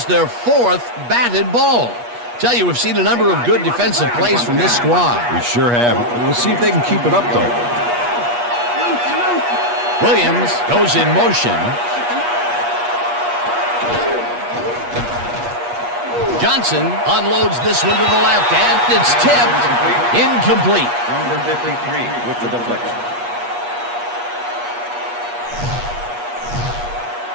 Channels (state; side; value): late; left; 8.4 ms